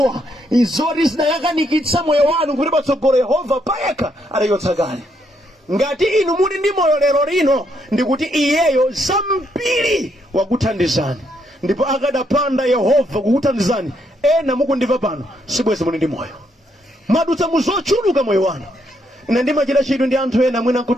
izoti zinayakanikitsa moyo wanu kuti patsogolo Yehova payekha adachotsa kale. Ngati inu muli ndi moyo lero lino ndikuti iyeyo zambiri wakuthandizani, ndipo akadapanda Yehova kukuthandizani, ena mukundimva pano sibwezi muli ndi moyo, madutsa muzochuluka moyo wanu. Ine ndimachita chidwi ndi anthu ena mwina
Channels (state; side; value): normal; both; correlation 0.75